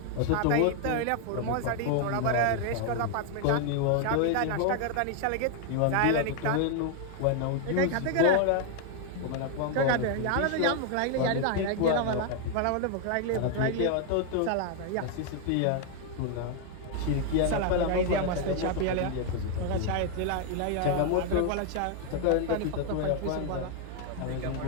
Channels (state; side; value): different; both; correlation 0.00